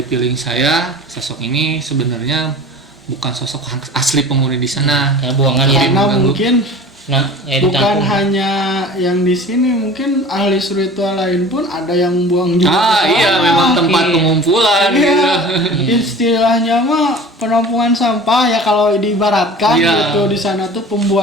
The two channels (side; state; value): both; normal; correlation 0.40